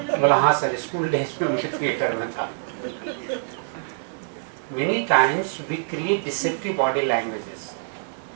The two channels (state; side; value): silent; left; digital silence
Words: बोला हाँ सर, स्कूल डेज में मुझे थिएटर में था। Many times we create deceptive body languages